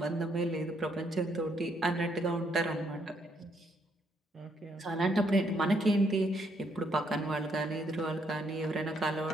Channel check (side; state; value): both; normal; correlation 0.73